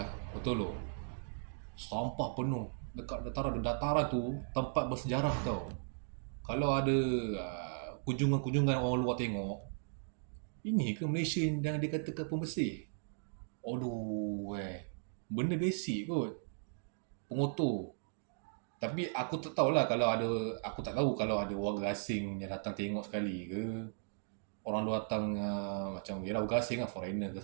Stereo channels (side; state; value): left; silent; digital silence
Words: betul loh. Sampah penuh dekat dataran tu, tempat bersejarah tau. Kalau ada kunjungan-kunjungan orang luar tengok, ini ke Malaysia yang dikatakan pembersih? Aduh, benda basic kot, pengotor. Tapi aku tak tahulah aku tak tahu kalau ada warga asing yang datang tengok sekali ke. Orang luar datang macam, yelah warga asing lah, foreigner ke